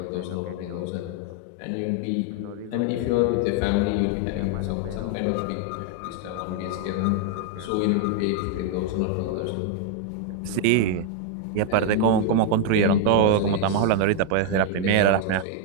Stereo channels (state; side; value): different; both; correlation 0.00